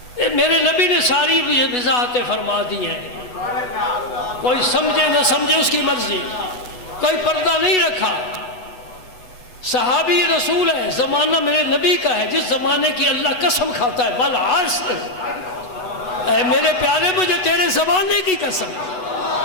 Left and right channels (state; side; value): late; right; 8.1 ms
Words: میرے نبی نے ساری وضاحتیں فرما دی ہیں، کوئی سمجھے نہ سمجھے اس کی مرضی، کوئی پردہ نہیں رکھا۔ صحابی رسول ہے، زمانہ میرے نبی کا ہے، جس زمانے کی اللہ قسم کھاتا ہے والعصر، اے میرے پیارے مجھے تیرے زمانے کی قسم،